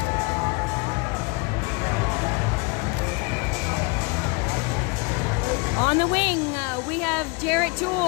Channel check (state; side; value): quieter; right; 28.8 dB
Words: On the wing, we have Jarrett